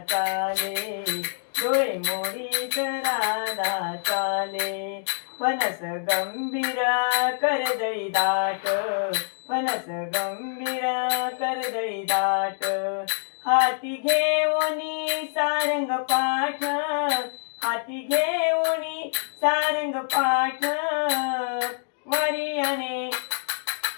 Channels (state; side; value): silent; right; digital silence